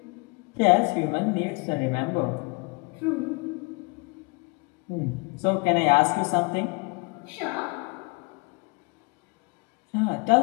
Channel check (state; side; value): quieter; right; 30.7 dB